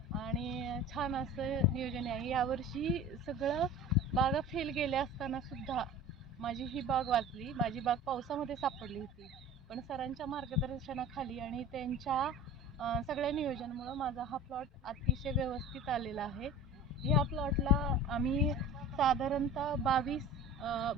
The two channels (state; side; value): normal; both; correlation 0.38